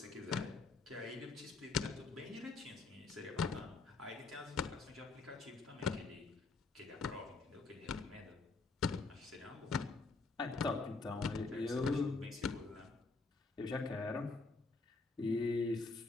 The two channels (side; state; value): right; quieter; 3.9 dB